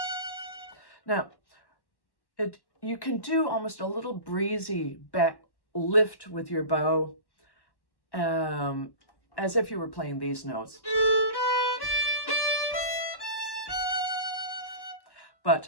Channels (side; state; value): right; late; 1.1 ms